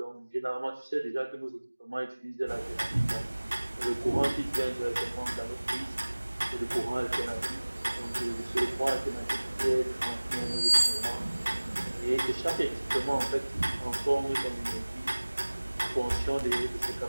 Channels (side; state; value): both; inverted; correlation -1.00